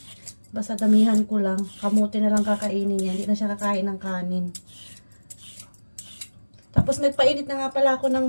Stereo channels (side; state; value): both; inverted; correlation -1.00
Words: basta damihan ko lang, kamote na lang kakainin niya, hindi na siya kakain ng kanin. Tapos nagpainit na nga pala ako